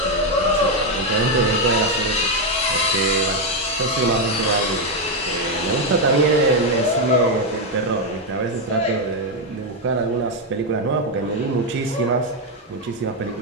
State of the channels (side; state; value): both; normal; correlation 0.04